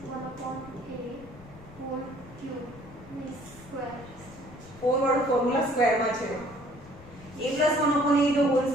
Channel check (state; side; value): noise; left; rumble, 20 dB below the sound